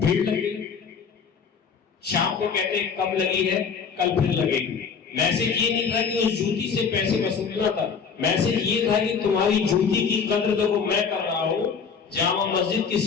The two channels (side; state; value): right; quieter; 6.1 dB